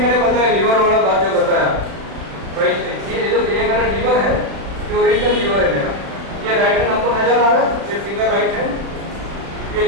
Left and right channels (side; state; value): left; late; 36 ms